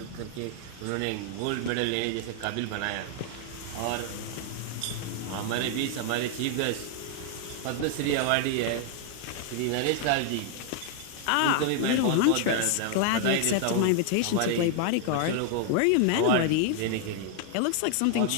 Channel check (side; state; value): both; different; correlation 0.00